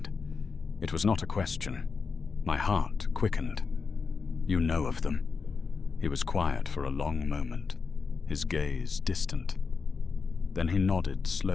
It was not a question. My heart quickened. "You know of them." He was quiet for a long moment, his gaze distant. Then he nodded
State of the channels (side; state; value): right; quieter; 5.0 dB